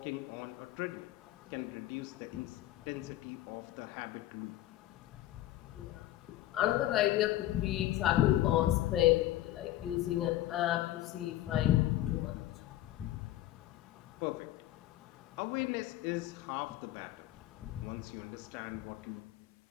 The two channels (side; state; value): right; quieter; 14.5 dB